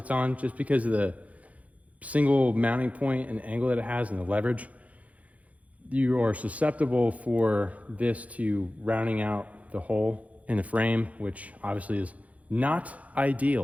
on, just because of the single mounting point and the angle that it has and the leverage. You are susceptible for this to rounding out the hole in the frame, which obviously is not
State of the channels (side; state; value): left; late; 0.068 ms